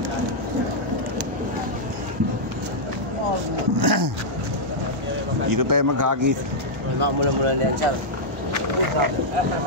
Dito tayo maghagis. Mula-mula na yan, sir.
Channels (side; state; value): both; normal; correlation -0.07